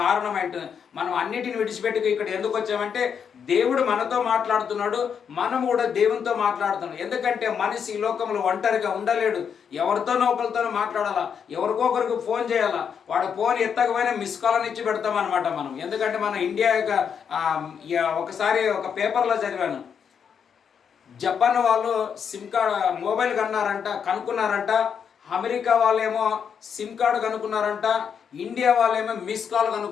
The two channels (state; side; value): quieter; right; 7.3 dB